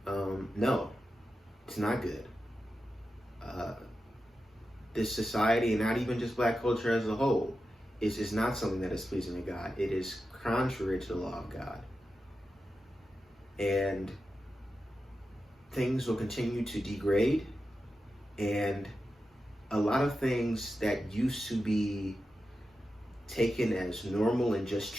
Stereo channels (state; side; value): normal; both; correlation 0.91